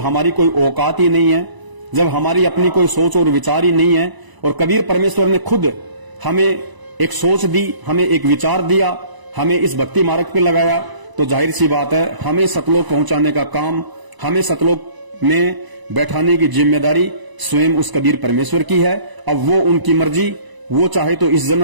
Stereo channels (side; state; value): left; late; 1.0 ms